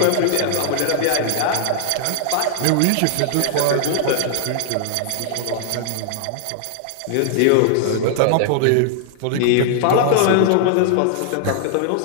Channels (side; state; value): both; different; correlation 0.00